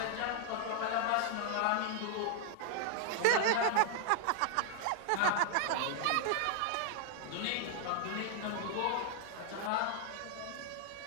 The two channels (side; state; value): both; different; correlation 0.00